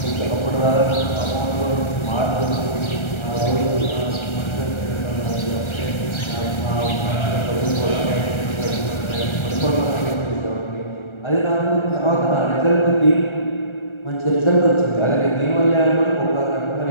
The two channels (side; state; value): right; late; 1.3 ms